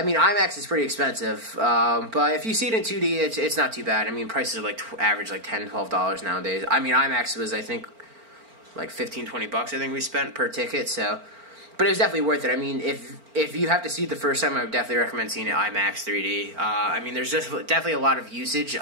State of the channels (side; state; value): left; late; 4.4 ms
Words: mean, IMAX is pretty expensive, but if you see it in 2D, it's not too bad. I mean, prices are like average like $10, $12 nowadays. I mean, IMAX was, I think, like $15-$20 I think we spent per ticket, so but it was definitely worth it. I mean, if you have to see it the first time, I would definitely recommend seeing it IMAX 3D. I mean, there's just definitely a lot of usage